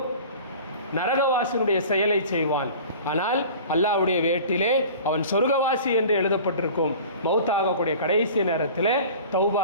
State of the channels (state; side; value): inverted; both; correlation -0.41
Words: நரகவாசியினுடைய செயலை செய்வான், ஆனால் அல்லாஹ்வுடைய வேட்டிலே அவன் சொர்க்கவாசி என்று எழுதப்பட்டிருக்கும். மௌத்தாகக்கூடிய கடைசி நேரத்தில் தௌபா